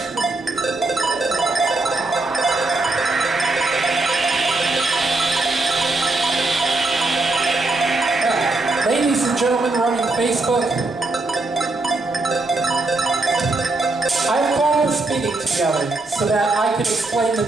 Ladies and gentlemen running Facebook, I've called this meeting together so that I can explain the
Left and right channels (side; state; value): left; quieter; 3.1 dB